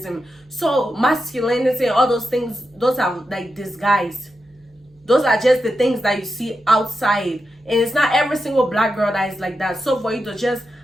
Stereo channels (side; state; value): both; normal; correlation 0.88